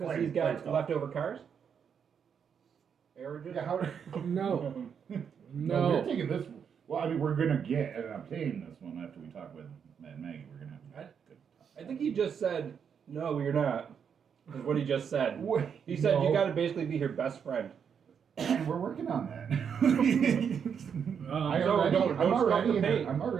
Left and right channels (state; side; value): quieter; left; 7.3 dB